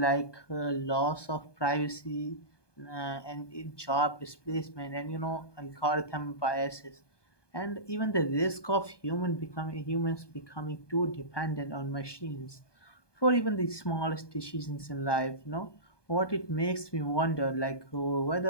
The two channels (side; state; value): right; late; 1.2 ms